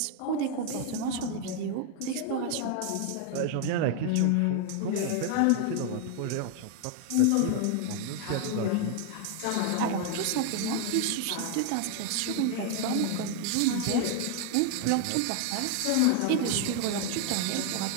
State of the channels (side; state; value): both; different; correlation 0.00